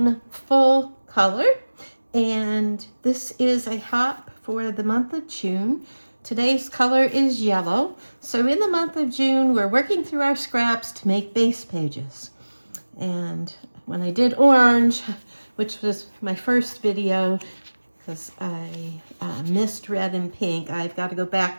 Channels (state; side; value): inverted; both; correlation -1.00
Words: full color, and this is a hop for the month of June. Today's color is yellow, so in the month of June we're working through our scraps to make base pages. And when I did orange, which was my first video, because I missed red and pink. I've got to go